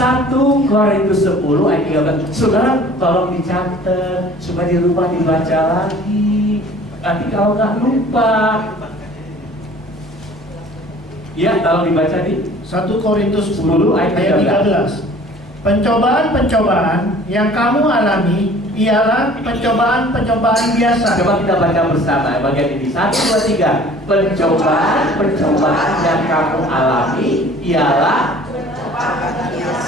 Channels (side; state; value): both; normal; correlation 0.49